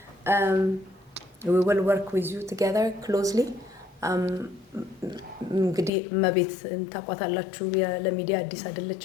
we will work with you together closely. እንግዲህ እመቤት ታቋታላችሁ ለሚዲያ አዲስ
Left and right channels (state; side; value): drops out; right; at 5.9 s